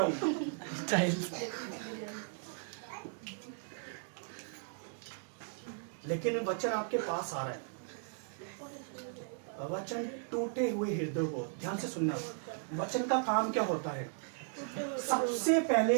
हूं, स्टाइल। लेकिन वचन आपके पास आ रहा है, वचन टूटे हुए हृदय को, ध्यान से सुनना, वचन का काम क्या होता है, सबसे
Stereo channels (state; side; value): silent; left; digital silence